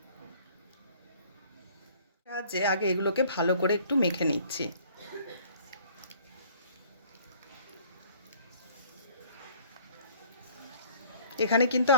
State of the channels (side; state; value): both; inverted; correlation -0.54